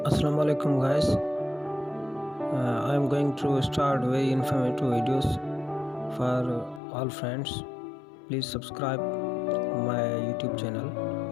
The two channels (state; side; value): drops out; right; at 6.8 s